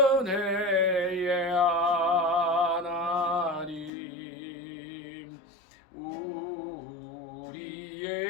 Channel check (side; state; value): right; drops out; at 3.9 s